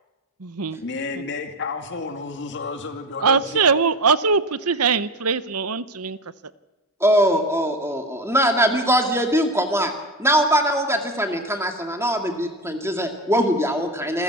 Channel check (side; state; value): both; normal; correlation 0.22